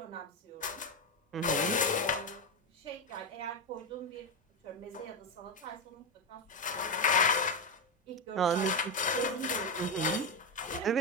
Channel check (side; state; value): both; normal; correlation 0.10